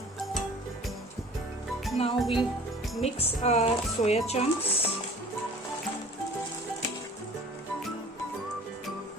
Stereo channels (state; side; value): normal; both; correlation 0.46